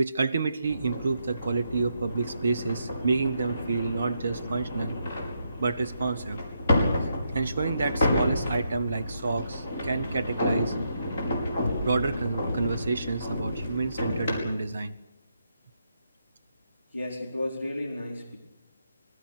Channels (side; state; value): both; inverted; correlation -0.80